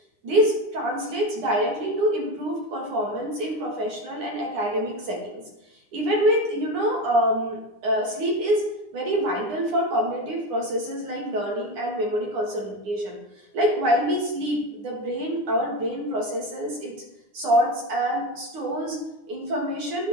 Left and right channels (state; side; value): late; left; 9.8 ms